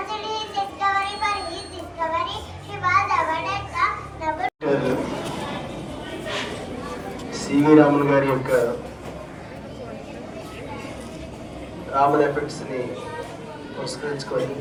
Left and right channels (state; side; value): identical; both; correlation 1.00